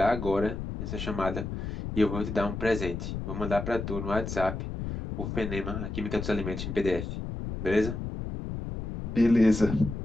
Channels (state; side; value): noise; left; rumble, 5 dB below the sound